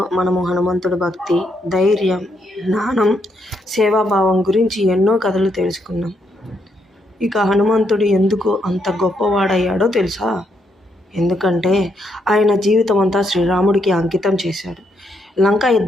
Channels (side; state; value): both; normal; correlation 0.77